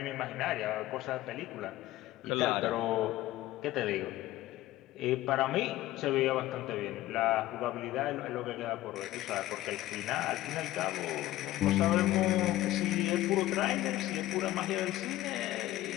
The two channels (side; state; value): right; quieter; 15.6 dB